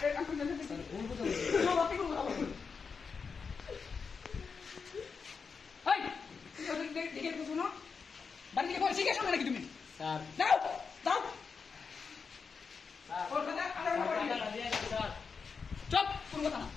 আপনি স্যার ভুল কথা আপনি কোন কথা বলছেন এই দেখে শুনো বাড়ি থেকে পরে শিখে শোনো নাকি তুমি স্যার। দাও দাও ওর কথা আলাদা করে স্যার চুপ কোন কথা না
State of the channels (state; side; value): quieter; right; 5.4 dB